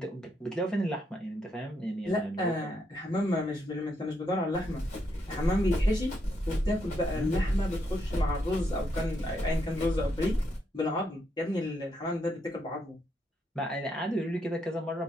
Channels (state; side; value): normal; both; correlation 0.78